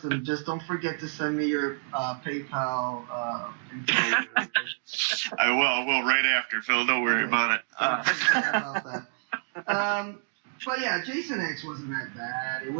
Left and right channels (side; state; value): left; silent; digital silence